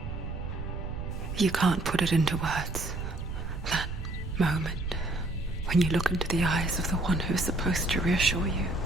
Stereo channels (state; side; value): noise; right; rumble, 6 dB below the sound